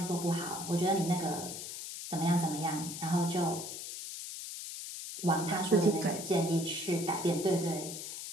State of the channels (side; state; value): left; noise; hiss, 8 dB below the sound